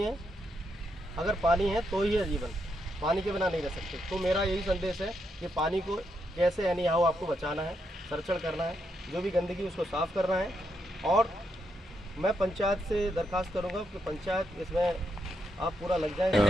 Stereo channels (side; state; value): both; normal; correlation 0.81